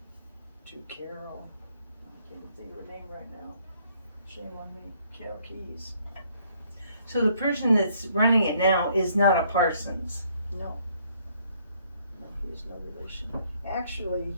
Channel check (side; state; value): both; inverted; correlation -0.66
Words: to Carol. I can't think of her name right now. Shame on me. Carol Keys. So the person that's running it now is not a Parsons. No, he's no relation. Actually,